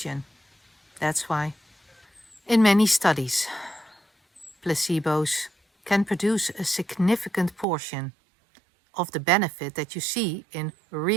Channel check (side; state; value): left; drops out; at 7.7 s